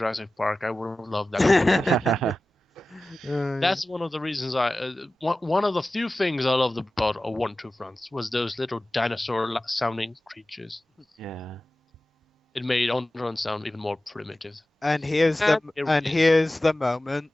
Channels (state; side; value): normal; both; correlation 0.96